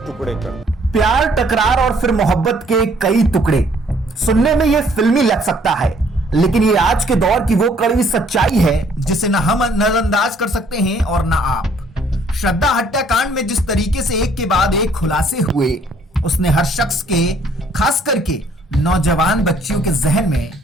कर दिए। प्यार, टकरार और फिर मोहब्बत के कई टुकड़े। सुनने में यह फिल्मी लग सकता है, लेकिन ये आज के दौर की वो कड़वी सच्चाई है जिसे न हम नजरअंदाज कर सकते हैं और न आप। श्रद्धा हत्याकांड में जिस तरीके से एक के बाद एक खुलासे हुए, उसने हर शख्स के, खास करके नौजवान बच्चियों के जहन में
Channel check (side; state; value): both; normal; correlation 0.62